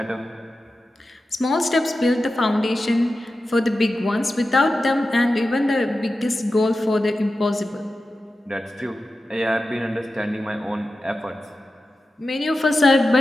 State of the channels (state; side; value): normal; both; correlation 0.93